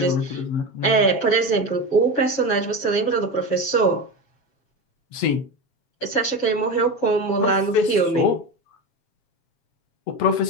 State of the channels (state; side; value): late; right; 7.3 ms